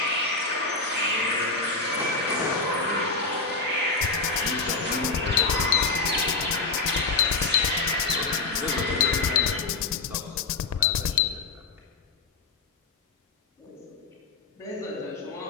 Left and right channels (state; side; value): quieter; right; 4.0 dB